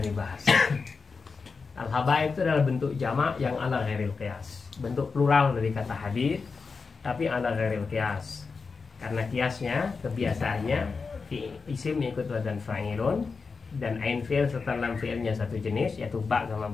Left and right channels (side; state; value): right; quieter; 4.7 dB